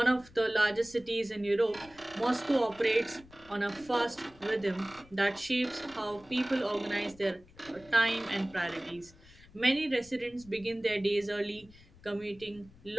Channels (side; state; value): left; noise; rumble, 24 dB below the sound